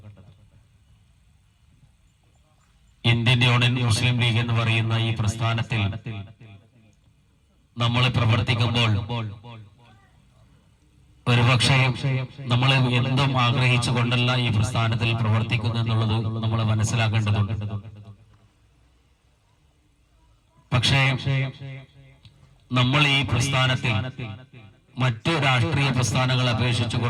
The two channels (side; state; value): both; identical; correlation 1.00